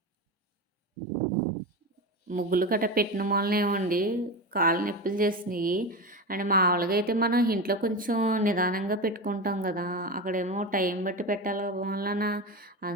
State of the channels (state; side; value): normal; both; correlation 0.22